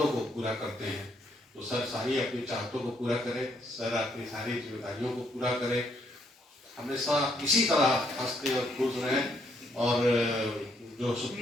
को पूरा करते हैं। तो सर सारी अपनी चाहतों को पूरा करें, सर अपनी सारी जिम्मेदारियों को पूरा करें, हमेशा इसी तरह हंसते और खुश रहें और जो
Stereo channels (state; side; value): normal; both; correlation 0.72